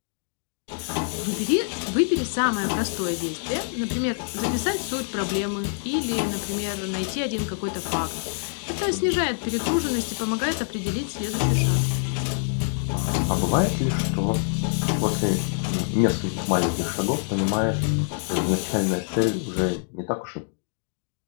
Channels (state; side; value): silent; right; digital silence